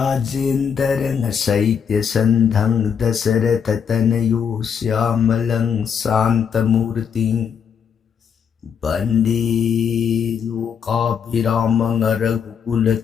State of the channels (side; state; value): right; quieter; 7.2 dB